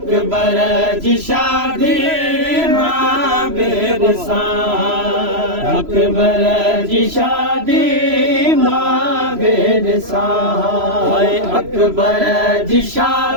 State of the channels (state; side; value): late; left; 3.0 ms